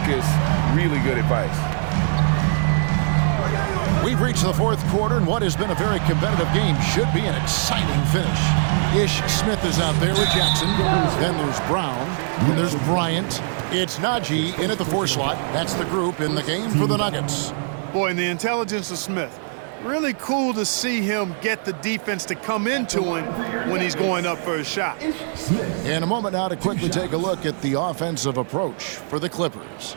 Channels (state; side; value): silent; left; digital silence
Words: Really good advice. We've reached the fourth quarter, and what has been a very competitive game should be an exciting finish. Ish Smith is out there with Jackson. Then there's Brown. And there's Bryant. It's Najee in at the 4 slot. That's the group in the game for the Nuggets. Boy, and the intelligence of Smith. Really cool to see him get the defense to come into him when he's going up for a shot. In a moment now to quickly take a look at the offensive approach for the Clippers.